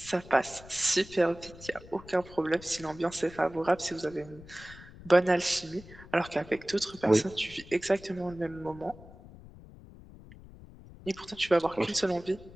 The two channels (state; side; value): noise; left; rumble, 19 dB below the sound